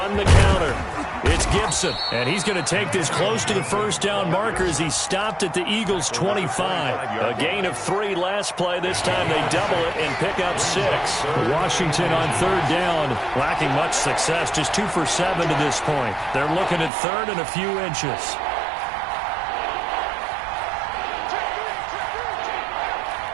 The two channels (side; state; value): left; drops out; at 16.9 s